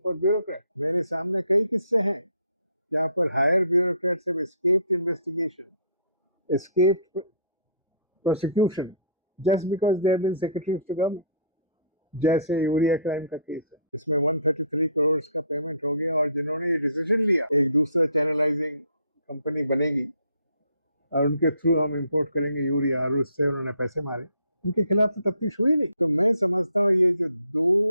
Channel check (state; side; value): inverted; both; correlation -0.59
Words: for bureaucrat. मेरे सामने कई किस्से हैं जहाँ पर higher bureaucrats have escaped investigation, escaped prosecution just because they have been secretaries to government. जैसे यूरिया क्राइम का केस है, इसमें 133 करोड़ का पेमेंट हो गया और जिन्होंने ये डिसीजन लिया एक दूसरा चैनलाइजिंग कंपनी बनेगी और उनके थ्रू हम इंपोर्ट करेंगे यूरिया और उससे उन्होंने पैसे मारे, उनके खिलाफ तो तफ्तीश हुई नहीं। तो मैं समझता हूँ ये जो